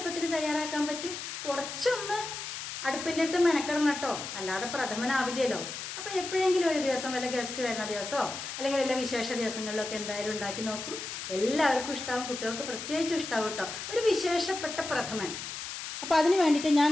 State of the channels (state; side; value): noise; left; hiss, 7 dB below the sound